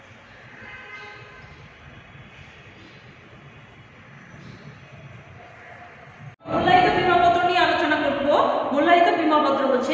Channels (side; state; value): both; identical; correlation 1.00